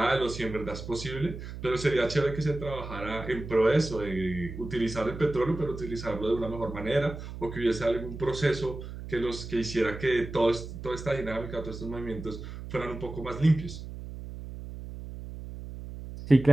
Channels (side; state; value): right; noise; hum, 10 dB below the sound